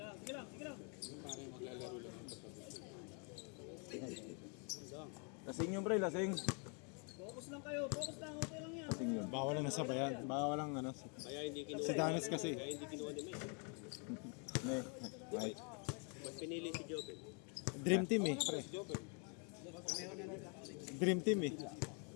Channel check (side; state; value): right; quieter; 37.2 dB